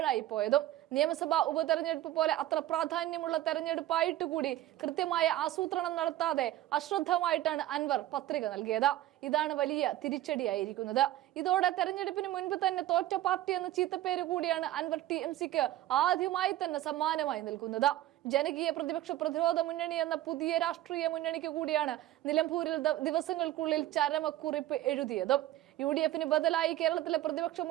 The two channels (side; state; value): left; quieter; 14.5 dB